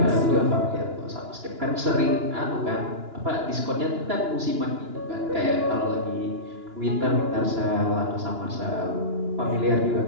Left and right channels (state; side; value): late; left; 2.9 ms